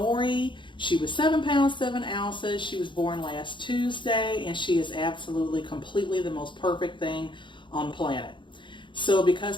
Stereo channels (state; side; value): late; right; 0.23 ms